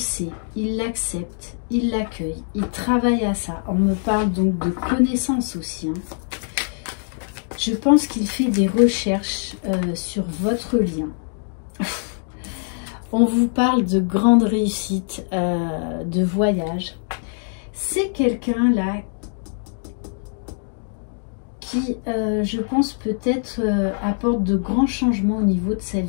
il l'accepte, il l'accueille, il travaille à ça. On me parle donc de connaissances aussi. Hein. Je pense qu'il fait des recherches sur votre lien. On vous parle de grandes réussites, de voyage. C'est quelqu'un là qui, je pense, peut-être apporte de grands changements au niveau de sa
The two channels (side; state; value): right; silent; 63 dB below the other